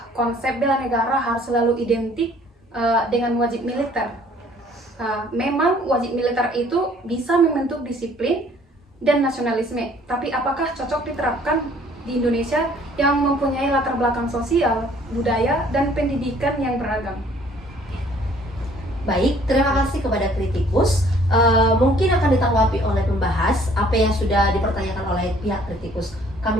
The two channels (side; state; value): both; normal; correlation 0.57